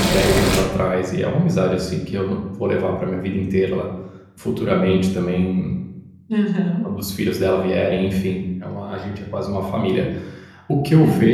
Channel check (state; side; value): identical; both; correlation 1.00